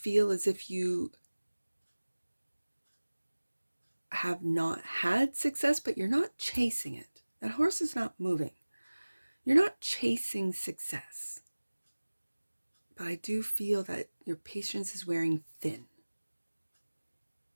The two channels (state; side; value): inverted; both; correlation -1.00